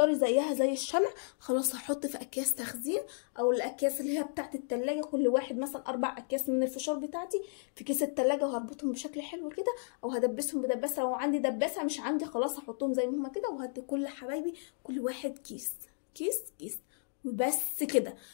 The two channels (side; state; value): right; silent; digital silence